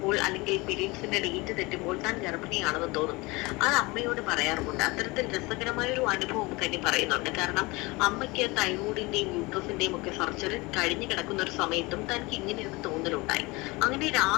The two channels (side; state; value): right; quieter; 24.0 dB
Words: അല്ലെങ്കിൽ പീരീഡ്സിന്റെ ഡേറ്റ് തെറ്റുമ്പോൾ താൻ ഗർഭിണിയാണെന്ന് തോന്നും. അത് അമ്മയോട് പറയാറുമുണ്ട്. അത്തരത്തിൽ രസകരമായ ഒരു അനുഭവം കനി പറയുന്നുണ്ട്. കാരണം അമ്മയ്ക്ക് തൈറോയിഡിന്റെയും യൂട്രസിന്റെയും ഒക്കെ സർജറി കഴിഞ്ഞു കിടക്കുന്ന ഒരു സമയത്തും തനിക്ക് ഇങ്ങനെ ഒരു തോന്നലുണ്ടായി. അങ്ങനെ